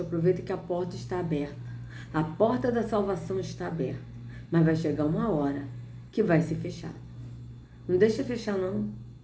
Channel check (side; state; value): both; identical; correlation 1.00